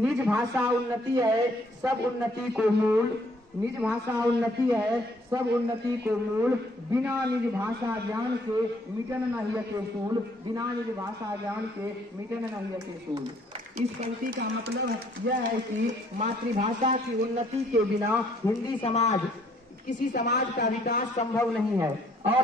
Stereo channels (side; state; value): both; normal; correlation 0.64